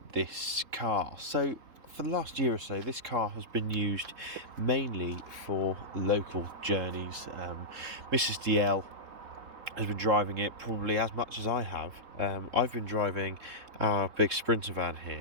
this car. So for the last year or so, this car has been used mainly for local journeys. Mrs. DL has been driving it probably as much as I have. I've been driving our big Sprinter van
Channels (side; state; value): left; late; 3.6 ms